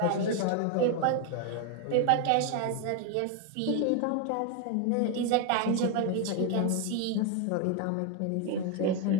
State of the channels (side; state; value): both; different; correlation 0.01